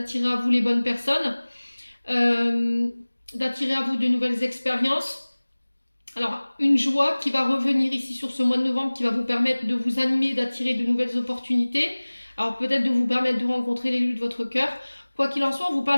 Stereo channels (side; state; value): both; inverted; correlation -1.00